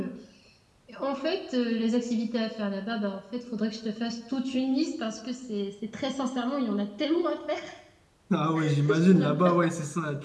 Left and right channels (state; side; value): identical; both; correlation 1.00